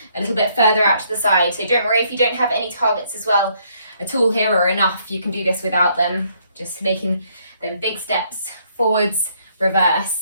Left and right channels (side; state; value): both; inverted; correlation -0.69